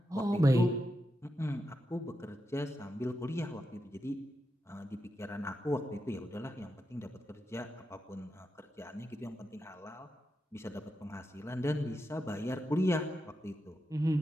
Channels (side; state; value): both; normal; correlation 0.87